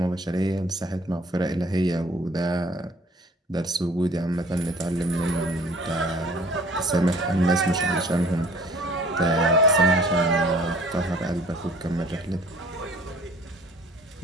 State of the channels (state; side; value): normal; both; correlation 0.52